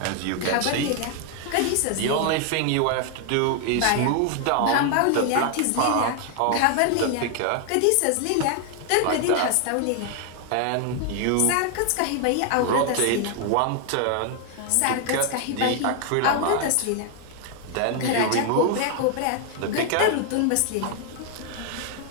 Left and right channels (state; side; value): different; both; correlation 0.00